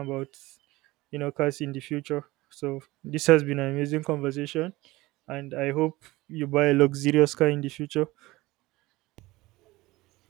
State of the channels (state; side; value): quieter; left; 19.9 dB